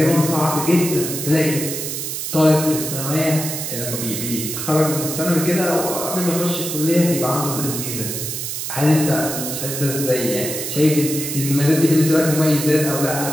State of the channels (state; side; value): noise; right; hiss, 5 dB below the sound